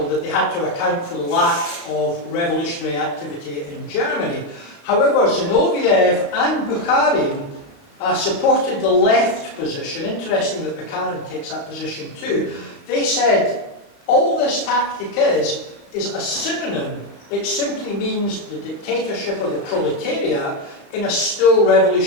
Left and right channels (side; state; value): right; late; 34 ms